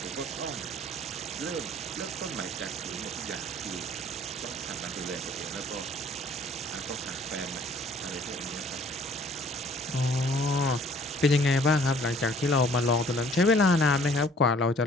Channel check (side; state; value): both; normal; correlation 0.55